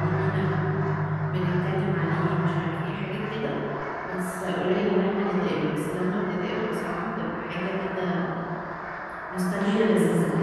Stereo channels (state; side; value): identical; both; correlation 1.00